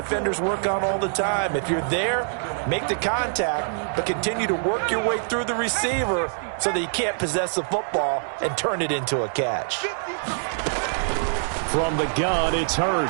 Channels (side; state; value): left; silent; digital silence